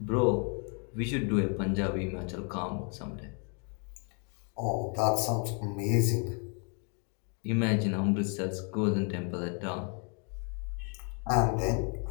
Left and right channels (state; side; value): quieter; right; 39.2 dB